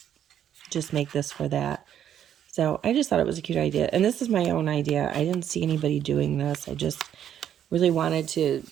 just make this for that. So I just thought it was a cute idea. And this is my own idea. I didn't see anybody doing this. I just really wanted to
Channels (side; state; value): left; quieter; 10.0 dB